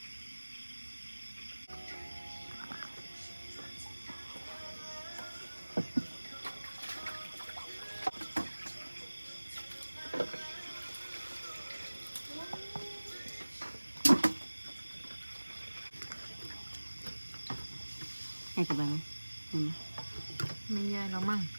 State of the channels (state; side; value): inverted; both; correlation -1.00